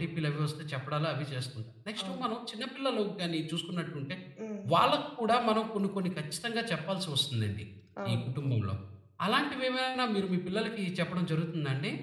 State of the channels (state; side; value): identical; both; correlation 1.00